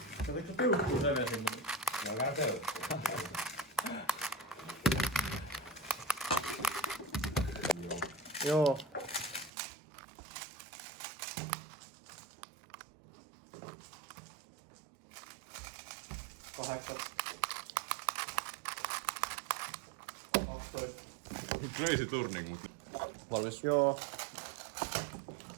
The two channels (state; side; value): drops out; left; at 9.5 s